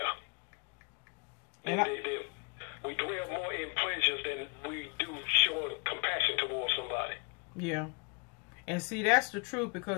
And we dwell more in pleasures than we do showing compassion towards somebody. Yeah. And see, that's the truth,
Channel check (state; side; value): quieter; right; 33.6 dB